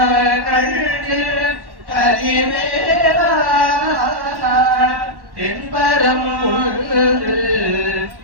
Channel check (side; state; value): left; late; 1.1 ms